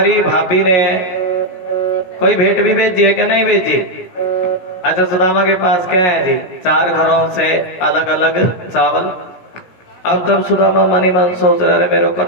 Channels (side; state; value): right; late; 17 ms